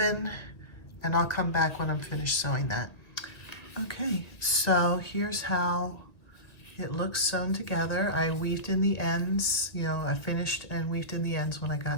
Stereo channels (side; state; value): right; late; 1.6 ms